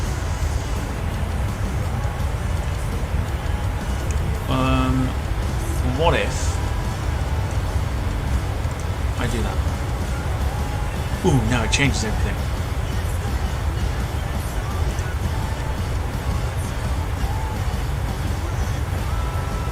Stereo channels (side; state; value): both; identical; correlation 1.00